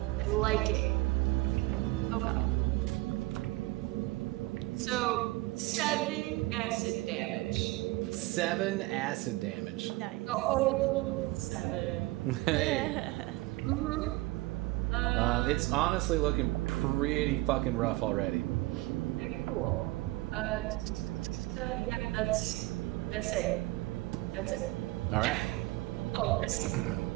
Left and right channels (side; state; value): left; quieter; 20.6 dB